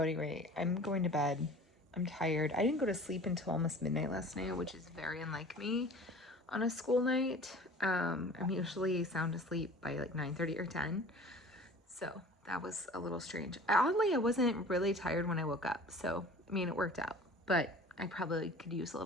anyway, I'm going to bed. I'm tired. I didn't go to sleep until almost midnight last night, which is very unlike me on a school night. I'm usually sound asleep by like 9:30 or 10. So that was a little strange. Oddly, I wasn't really tired when I woke up. So, I mean, it worked out, but I probably could use a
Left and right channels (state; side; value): normal; both; correlation 0.43